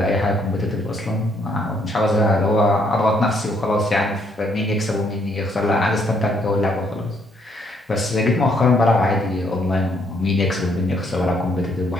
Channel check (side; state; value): both; normal; correlation 0.70